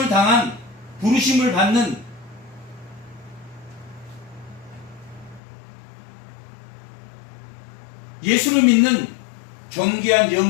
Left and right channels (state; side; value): drops out; right; at 5.4 s